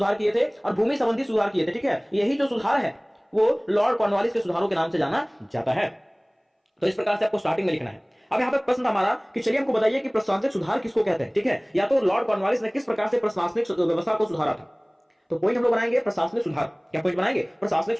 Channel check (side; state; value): both; identical; correlation 1.00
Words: किए थे, और भूमि संबंधी सुधार किए थे, ठीक है। यही जो सुधार है वो लॉर्ड कॉर्नवालिस के सुधारों के नाम से जाना जाता है। तो इस प्रकार से आपको स्टार्टिंग में लिखना है। अब यहाँ पे प्रश्न था हमारा कि चलिए हमको बताइए कि प्रशासनिक सुधार किसको कहते हैं, ठीक है, या तो लॉर्ड कॉर्नवालिस ने किस प्रकार से प्रशासनिक व्यवस्था को सुधारा था। तो पॉइंट हम लोग बनाएंगे प्रशासनिक सुधार। क्या पॉइंट बनाएंगे? प्रशासनिक